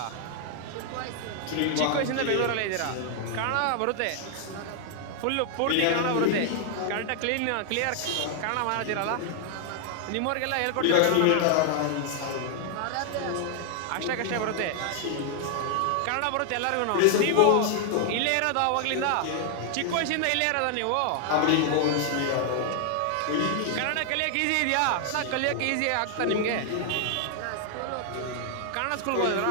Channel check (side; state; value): both; different; correlation 0.00